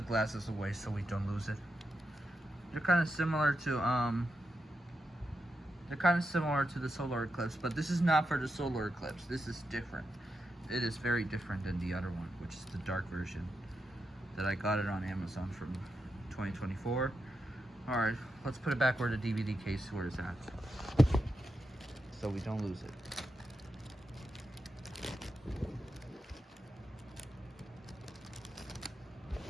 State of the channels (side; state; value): both; normal; correlation 0.86